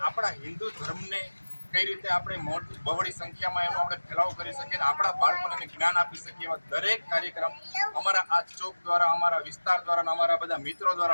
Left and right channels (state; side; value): inverted; both; correlation -1.00